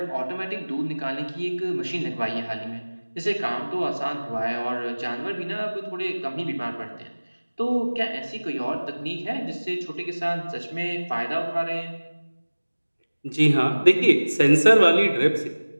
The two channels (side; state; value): both; inverted; correlation -1.00